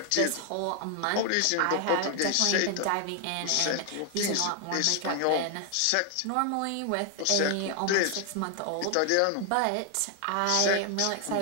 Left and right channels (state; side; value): different; both; correlation 0.00